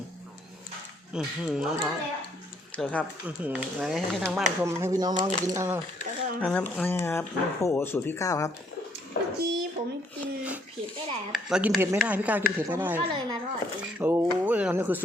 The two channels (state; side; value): normal; both; correlation 0.68